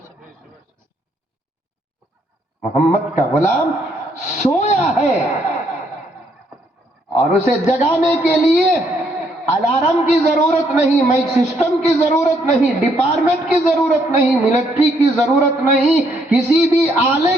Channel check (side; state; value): both; normal; correlation 0.71